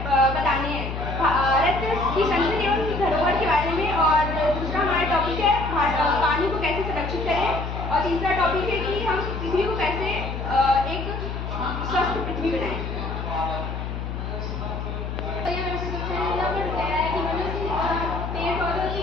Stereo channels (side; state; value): left; noise; hum, 5 dB below the sound